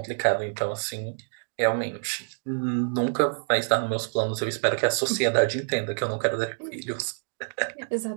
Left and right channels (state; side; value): silent; left; digital silence